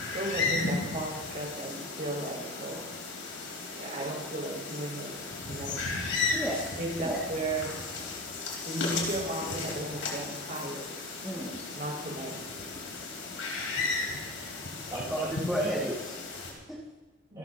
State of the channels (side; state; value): both; normal; correlation 0.29